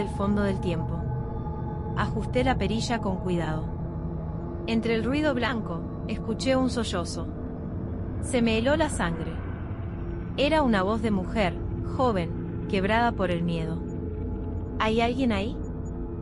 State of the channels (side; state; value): both; identical; correlation 1.00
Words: fondo del tiempo. Ajusté la perilla con cuidado. Entre el ruido blanco, escuché un sollozo. Se me heló la sangre. Era una voz de mujer, joven, quebrada por el miedo. ¿Hay alguien ahí?